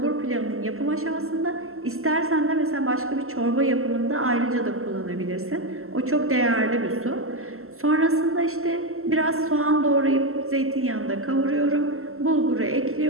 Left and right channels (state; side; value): late; left; 0.62 ms